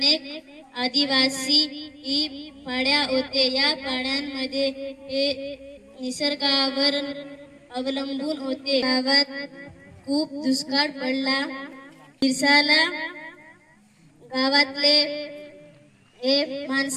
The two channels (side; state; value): both; identical; correlation 1.00